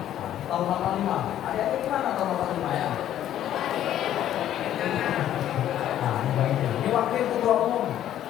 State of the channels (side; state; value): right; quieter; 11.6 dB